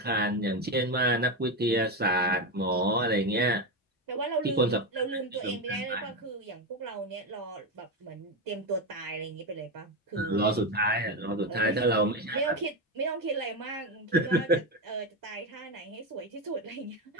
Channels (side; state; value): both; normal; correlation 0.13